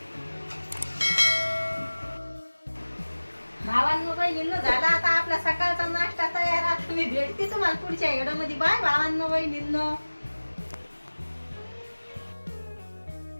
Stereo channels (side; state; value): both; inverted; correlation -1.00